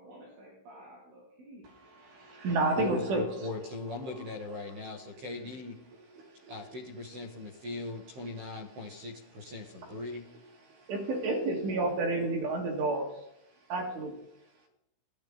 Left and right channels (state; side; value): late; left; 16 ms